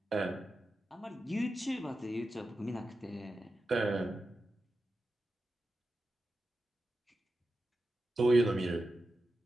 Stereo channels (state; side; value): normal; both; correlation 0.91